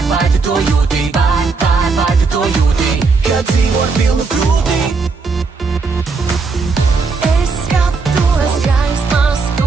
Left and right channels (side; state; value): left; quieter; 4.4 dB